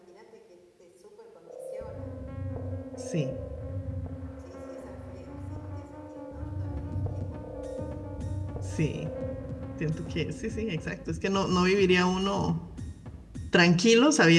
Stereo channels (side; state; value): both; identical; correlation 1.00